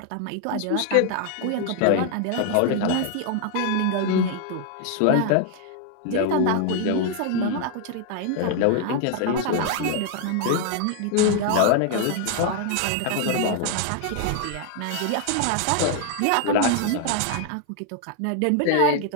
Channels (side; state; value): both; different; correlation 0.00